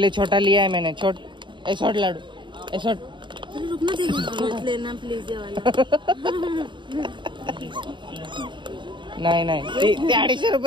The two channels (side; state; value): left; late; 0.23 ms